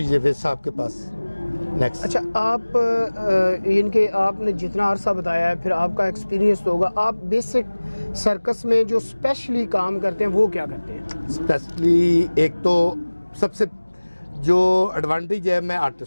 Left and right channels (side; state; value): both; inverted; correlation -1.00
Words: जावेद साहब के पास। नेक्स्ट। अच्छा, आप इनके आपने जितना अरसा बताया है, फिर आपका एक्सपीरियंस तो होगा। आप बेसिक सर्कस में जो स्पेशली काम करते हैं वो क्या करते हैं? स्पेशली एक तो सबसे जो एडवांटेज है, मैं